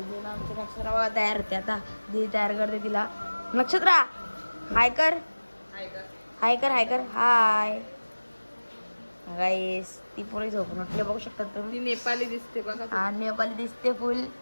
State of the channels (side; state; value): both; inverted; correlation -1.00